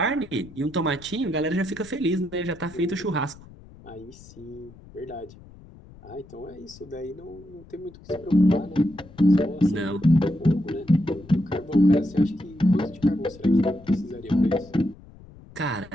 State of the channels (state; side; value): noise; left; rumble, 21 dB below the sound